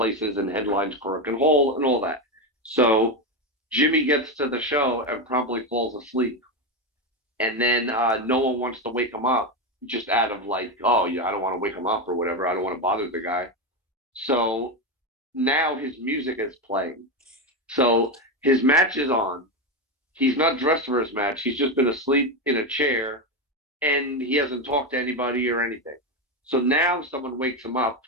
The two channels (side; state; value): both; normal; correlation 0.12